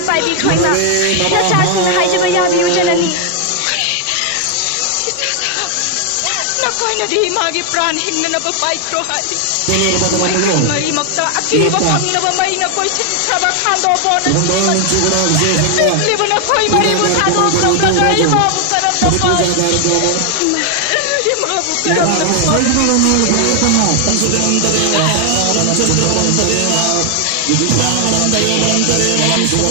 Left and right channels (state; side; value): different; both; correlation 0.00